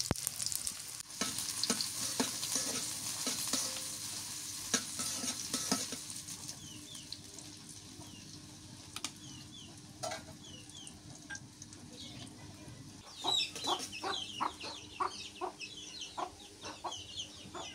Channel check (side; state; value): right; noise; hum, 26 dB below the sound